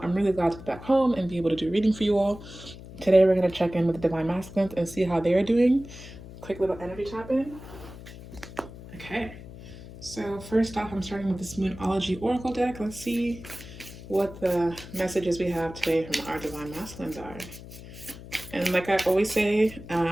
I'm really glad to be back home and be able to do a reading for you all. Today, we're going to check in with the Divine Masculines and see how they're doing. Quick little energy tap in. Okay. So first off, I'm starting with this Moonology Oracle deck. Let's see what the messages we have today from our Divine Masculines are. And like I always say,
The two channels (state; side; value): noise; left; hum, 15 dB below the sound